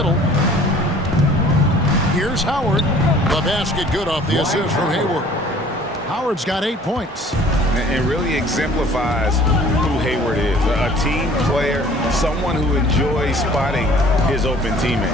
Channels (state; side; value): normal; both; correlation 0.51